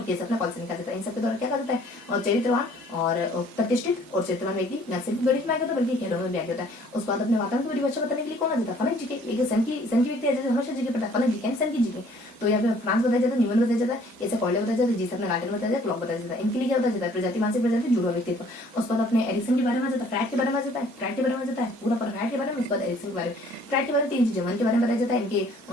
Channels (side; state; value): both; normal; correlation 0.57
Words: केस अपने कॉल्सनिका देता है। इन सबके द्वारा क्या कहा जाता है, और चरित्रवान और प्रतिष्ठित और चरित्रवान व्यक्ति न सिर्फ गणित में आगे होता है बल्कि खेलों में भी आगे होता है। उसके बाद अपने वातावरण की परिभाषा बताने के लिए कौन आ जाता है, फनक जी के। एक सन की व्यक्ति है जैसे हमेशा जी के पढ़ता है, फनक जी के सन की जी के। तो यहाँ पे फ्रांस बताया जाता है, न्यूमन बताया जाता है, कैसे कॉर्डे बताया जाता है, जिस अपने गार्डन बताया जाता है, क्लॉक बताया जाता है। इनके लिए क्या होता है, प्रजाति मानसिक प्रजाति जुड़वा व्यक्तित्व। उसके बाद अपने एरिक्सन के बारे में जाता है, फ्राइड के बारे में जाता है, पूरा पर फ्राइड के बारे में। उसके बाद एरिक्सन के बारे में, फ्राइड के बारे में 3 चीजें, मन के बारे में बताया जाता है, इनके